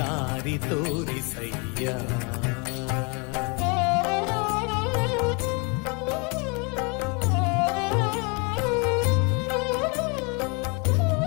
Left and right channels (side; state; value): right; quieter; 31.8 dB